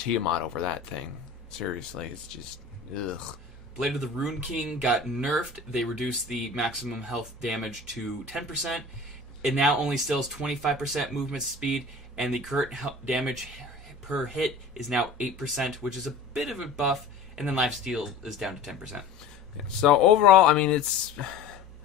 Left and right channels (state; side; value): quieter; right; 3.9 dB